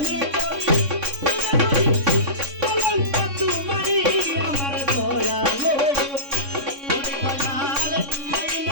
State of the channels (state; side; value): late; left; 3.6 ms